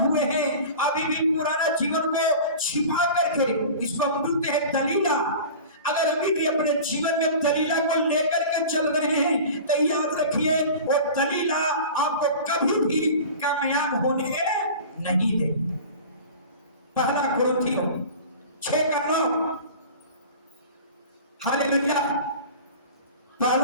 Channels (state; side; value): inverted; both; correlation -0.37